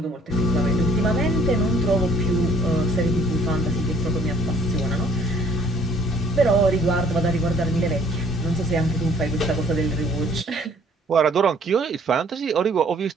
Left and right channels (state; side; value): normal; both; correlation 0.59